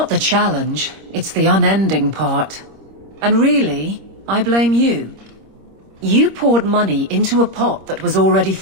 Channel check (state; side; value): late; left; 26 ms